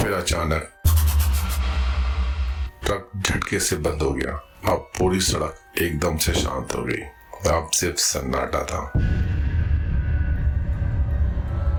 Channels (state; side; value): identical; both; correlation 1.00